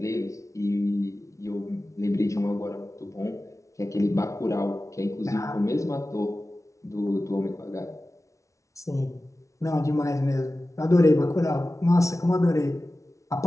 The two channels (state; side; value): late; right; 0.15 ms